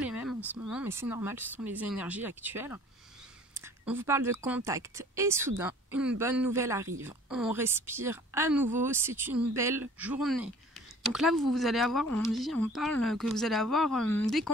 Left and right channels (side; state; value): both; normal; correlation 0.50